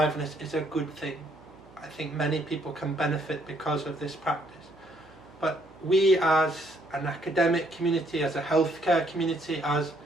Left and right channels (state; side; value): noise; right; hum, 25 dB below the sound